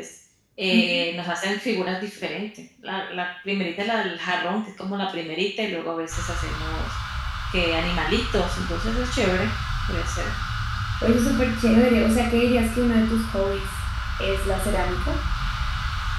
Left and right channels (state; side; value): identical; both; correlation 1.00